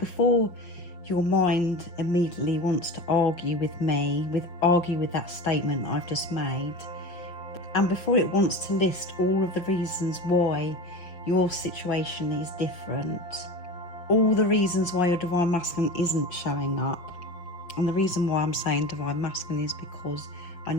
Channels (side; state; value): right; late; 5.5 ms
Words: your mind immediately wants to argue with me, argue with that statement I've just made, and before it wants to list all of the reasons why your situation is different, all the reasons why your divine masculine isn't showing up, and the reason why I'm saying divine masculine is because I